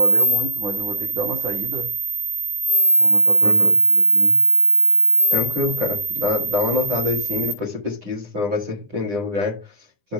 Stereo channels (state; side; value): late; left; 9.9 ms